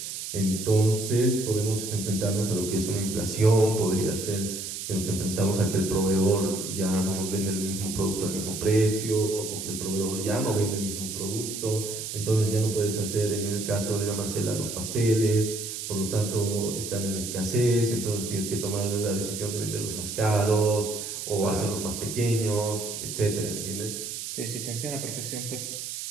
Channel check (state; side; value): noise; right; hiss, 6 dB below the sound